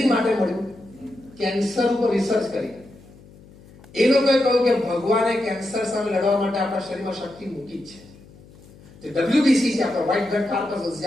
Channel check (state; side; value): noise; left; hum, 23 dB below the sound